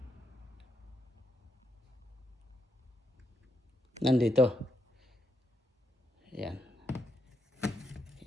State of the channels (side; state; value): both; normal; correlation 0.80